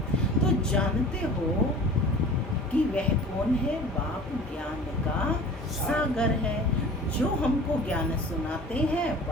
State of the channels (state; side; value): normal; both; correlation 0.41